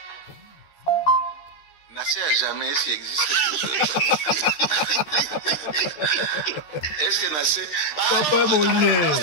Nassé à jamais s'il existe quelque chose. Est-ce que Nassé... Papa Molière.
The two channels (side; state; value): right; late; 13 ms